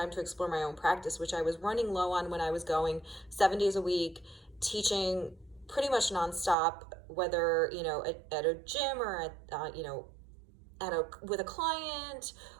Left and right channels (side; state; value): left; drops out; at 6.6 s